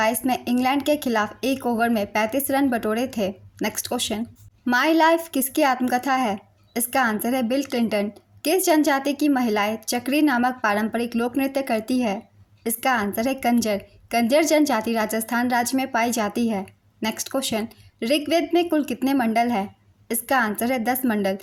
में इंग्लैंड के खिलाफ एक ओवर में 35 रन बटोरे थे। नेक्स्ट क्वेश्चन, माई लाइफ किसकी आत्मकथा है? इसका आंसर है बिल क्लिंटन। किस जनजाति की महिलाएं चक्री नामक पारंपरिक लोक नृत्य करती है? इसका आंसर है कंजर। कंजर जनजाति राजस्थान राज्य में पाई जाती है। नेक्स्ट क्वेश्चन, ऋग्वेद में कुल कितने मंडल है? इसका आंसर है 10 मंडल।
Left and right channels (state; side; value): identical; both; correlation 1.00